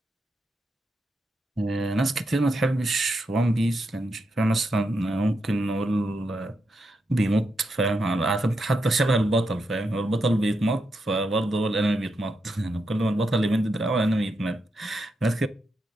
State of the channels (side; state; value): both; normal; correlation 0.84